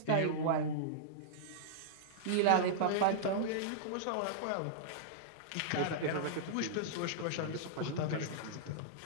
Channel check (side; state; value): both; different; correlation -0.02